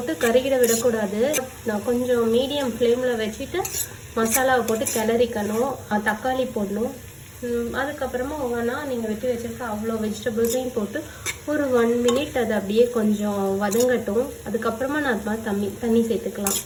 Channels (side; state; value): both; identical; correlation 1.00